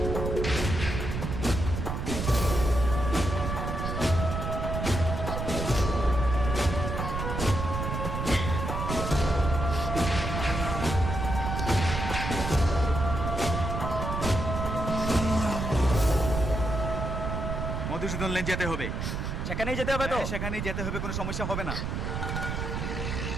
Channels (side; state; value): right; noise; rumble, 3 dB below the sound